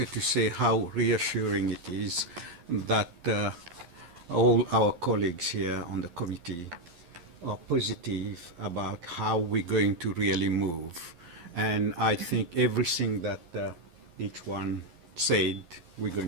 to say how reassuring it is that all our colleagues here on the committee are positive about how we're going to really move. And I think everything that each one said, we're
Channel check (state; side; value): late; left; 12 ms